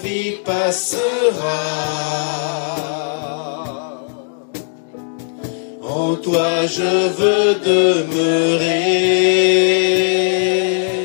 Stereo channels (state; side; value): silent; right; digital silence